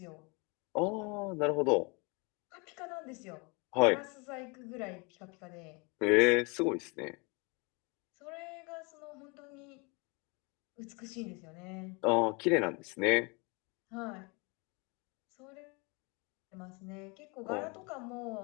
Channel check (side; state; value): right; quieter; 30.1 dB